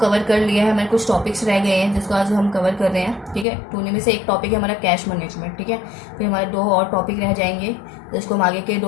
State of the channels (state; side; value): drops out; right; at 3.5 s